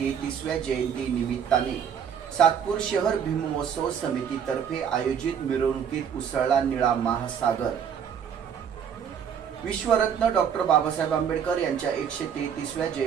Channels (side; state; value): left; quieter; 7.9 dB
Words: जयंती निमित्ताने सातपूर शहर भीममहोत्सव समितीतर्फे आयोजित मिरवणुकीत उसळला निळा महासागर। विश्वरत्न डॉक्टर बाबासाहेब आंबेडकर यांच्या 133व्या